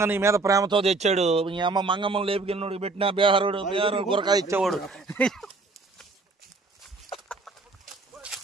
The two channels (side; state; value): left; quieter; 3.6 dB